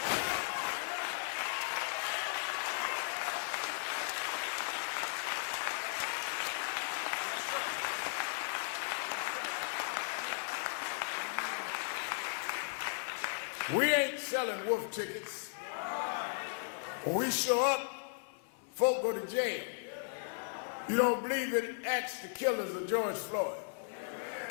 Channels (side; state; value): right; silent; 54 dB below the other